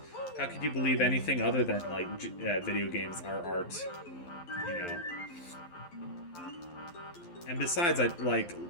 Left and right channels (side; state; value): right; late; 11 ms